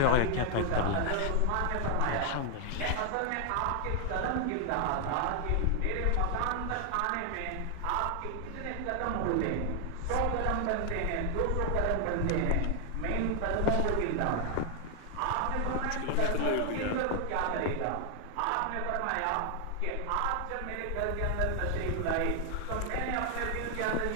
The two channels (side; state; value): both; different; correlation 0.00